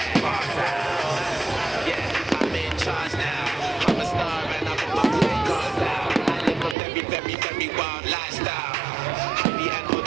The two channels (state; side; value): drops out; left; at 6.8 s